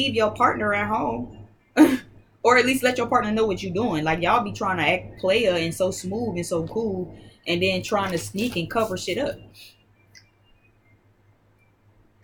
your partner at home. Or at least let your partner know what you're doing. Like y'all be trying to act player and so smooth and so cool, and then trying to sneak and cover shit up.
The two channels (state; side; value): identical; both; correlation 1.00